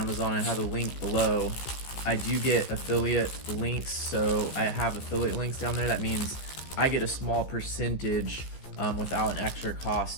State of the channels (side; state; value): right; late; 15 ms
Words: I have a link below. I do get affiliate links, so I have affiliate links down there. That means I get a small percentage without an extra